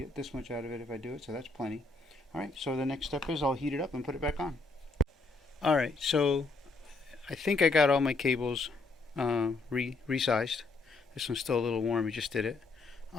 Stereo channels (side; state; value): right; quieter; 3.6 dB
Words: this much out of it if I do it, so that's plenty. All right, so the next step is I'll heat it up and put it back on. All right, so I think I got all my cables resized. This one's still a little warm, we just did it.